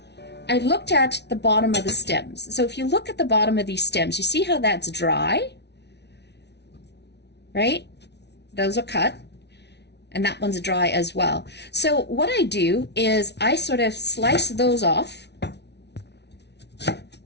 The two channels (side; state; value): right; late; 0.50 ms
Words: I looked at the bottom of the stems. So if you look at the bottom of these stems, you see how that's dry, right? Those are cut, and that one's dry as well. So what I do is I sort of slice those off,